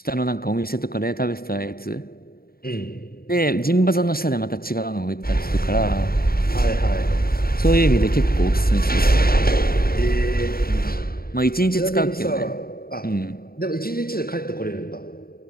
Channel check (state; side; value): late; right; 0.43 ms